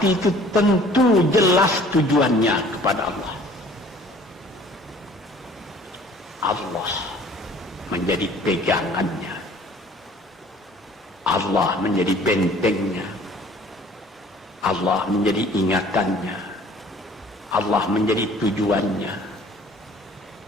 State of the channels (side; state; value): both; normal; correlation 0.52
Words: itu tentu jelas tujuannya kepada Allah. Allah menjadi pegangannya. Allah menjadi bentengnya. Allah menjadi ingatannya. Allah menjadi tujuannya.